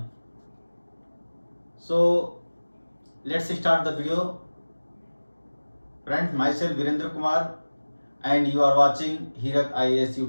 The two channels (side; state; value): both; inverted; correlation -1.00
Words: So let's start the video. Friends, myself Virendra Kumar and you are watching Hirak IAS